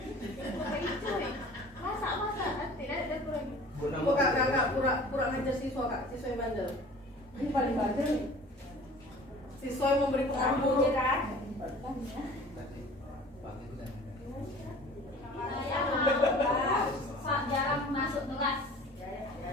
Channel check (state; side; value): normal; both; correlation 0.45